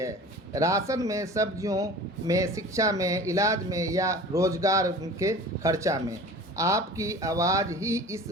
राशन में, सब्जियों में, शिक्षा में, इलाज में या रोज़गार के खर्चा में। आपकी आवाज़ ही इस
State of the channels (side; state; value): both; normal; correlation 0.40